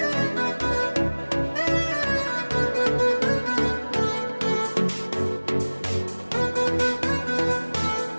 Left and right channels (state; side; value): inverted; both; correlation -1.00